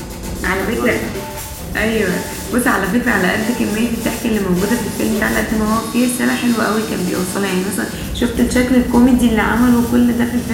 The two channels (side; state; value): both; identical; correlation 1.00